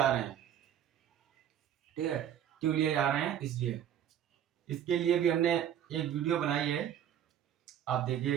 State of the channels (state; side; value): quieter; left; 10.1 dB